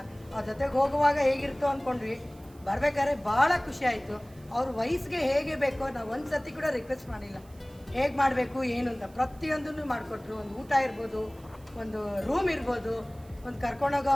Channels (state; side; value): noise; right; hiss, 28 dB below the sound